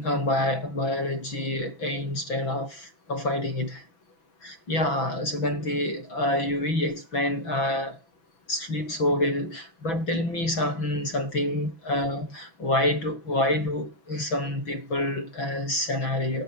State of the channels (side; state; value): right; late; 6.0 ms